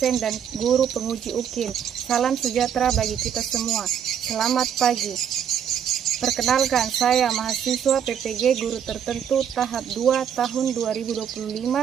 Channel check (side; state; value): left; quieter; 8.6 dB